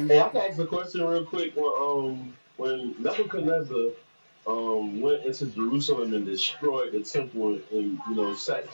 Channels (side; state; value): both; inverted; correlation -1.00